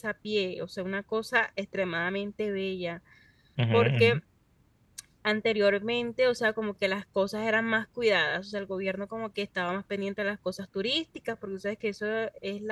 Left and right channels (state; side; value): identical; both; correlation 1.00